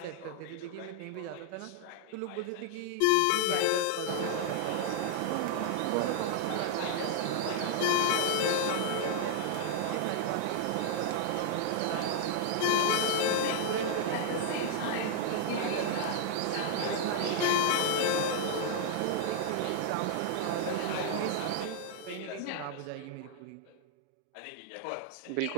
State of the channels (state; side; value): different; both; correlation 0.00